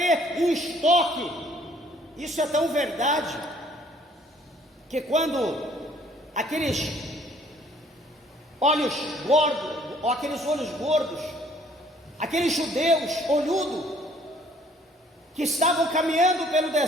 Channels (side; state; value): both; normal; correlation 0.60